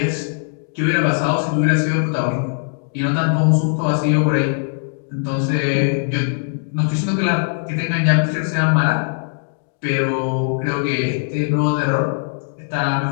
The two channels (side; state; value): right; silent; 60 dB below the other